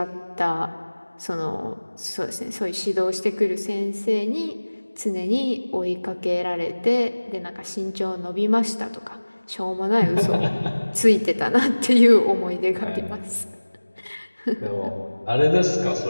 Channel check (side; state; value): both; inverted; correlation -1.00